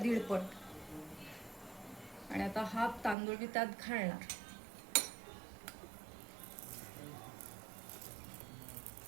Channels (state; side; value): drops out; left; at 3.2 s